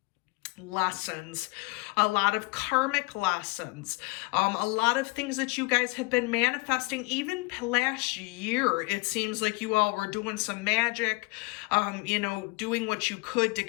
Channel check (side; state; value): right; quieter; 27.5 dB